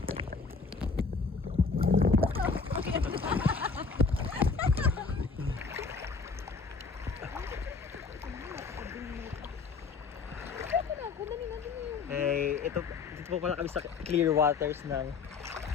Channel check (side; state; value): right; quieter; 4.8 dB